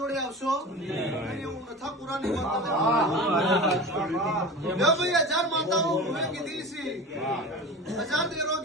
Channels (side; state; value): both; normal; correlation 0.32